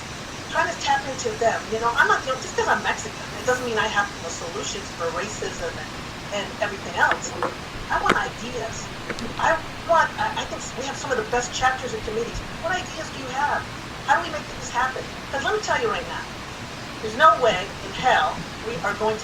trying to tap into them. I'm not, just because I'm Mexican, it doesn't mean I have the solutions for racism and everything else. I want ideas. I think we have some of the best chapters and committees. What ideas do you have? How do we make this happen? Because let me tell you right now, there's no way in hell we are going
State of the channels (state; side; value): identical; both; correlation 1.00